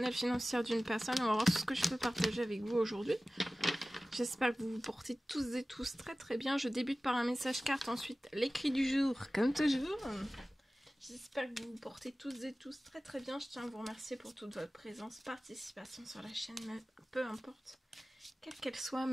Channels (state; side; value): normal; both; correlation 0.97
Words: financière d'une personne. On va voir ce que je peux partager avec vous aujourd'hui. J'espère que vous vous portez tous et tous très très bien. Je débute par un message carte, ensuite l'écrit du jour, comme toujours. J'espère que vous vous portez tous et tous très très bien. Je tiens à vous remercier pour toute votre présence, participation sur la chaîne, peu importe, quelle qu'elle soit.